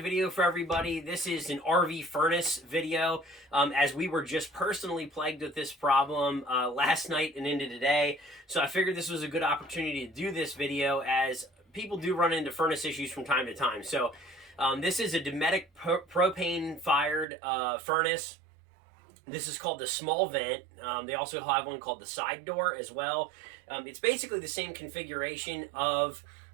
video for everybody. This is an RV furnace video, as we were just personally plagued with this problem last night and into today. So I figured this was a good opportunity to do this video, as people do run into furnace issues from time to time. So this is a Dometic propane fired furnace. This is called the small vent. They also have one called the side door as well. It's basically the same configuration of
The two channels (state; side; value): drops out; left; at 17.2 s